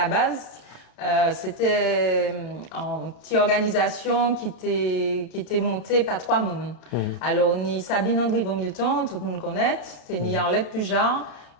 base, c'était une petite organisation qui était montée par 3 personnes. Alors, ni Sabine André Milton, tout le monde connaît, c'est ni Arlette Pujar,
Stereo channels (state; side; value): late; right; 32 ms